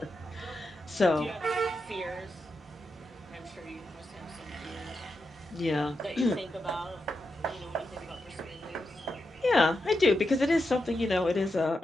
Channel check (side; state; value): both; normal; correlation 0.87